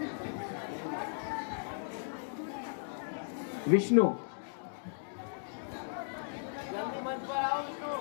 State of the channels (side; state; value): right; silent; digital silence